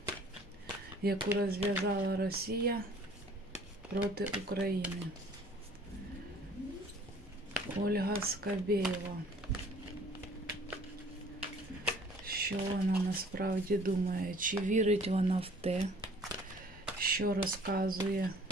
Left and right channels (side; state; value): both; normal; correlation 0.54